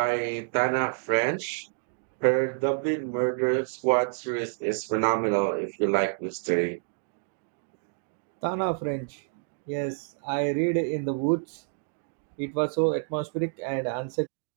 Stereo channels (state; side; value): silent; left; digital silence